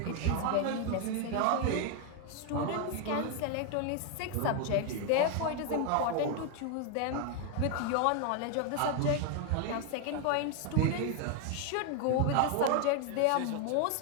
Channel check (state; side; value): different; both; correlation 0.01